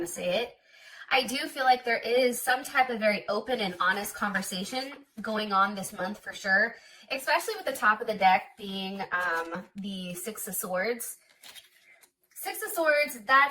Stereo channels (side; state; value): both; identical; correlation 1.00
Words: to say it. I do feel like there is some type of very open and honest conversation going on this month for sure, especially with the top of the deck being the Six of Swords. Six of Swords,